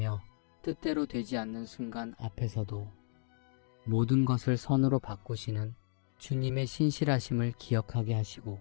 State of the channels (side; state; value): right; silent; digital silence